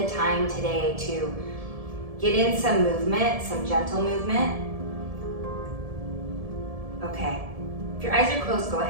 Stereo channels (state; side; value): late; left; 1.7 ms